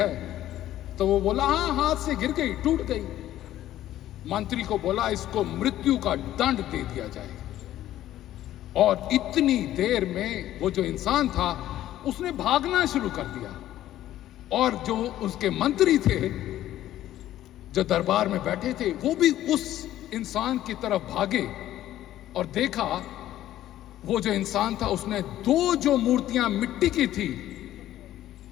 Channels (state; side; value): quieter; right; 13.2 dB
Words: तो वो बोला हाँ, हाथ से गिर गई, टूट गई। मंत्री को बोला इसको मृत्यु का दंड दे दिया जाए। और इतनी देर में वो जो इंसान था उसने भागना शुरू कर दिया और जो उसके मंत्री थे जो दरबार में बैठे थे वो भी उस इंसान की तरफ भागे और देखा वो जो इंसान था उसने 2 जो मूर्तियां मिट्टी की थी